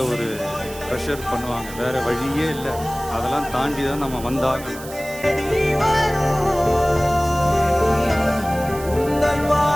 ஒரு ப்ரெஷர் பண்ணுவாங்க. வேற வழியே இல்லை. அதெல்லாம் தாண்டி தான் நம்ம வந்தாங்க.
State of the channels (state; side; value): noise; right; hiss, 15 dB below the sound